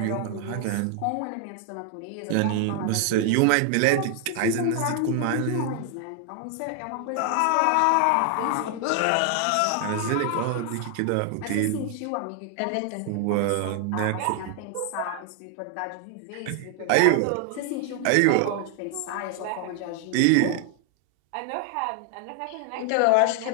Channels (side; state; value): both; different; correlation 0.00